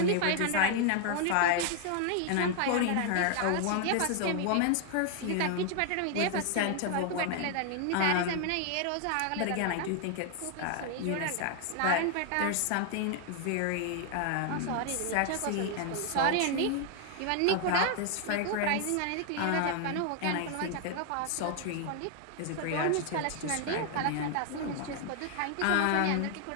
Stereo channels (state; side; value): different; both; correlation 0.00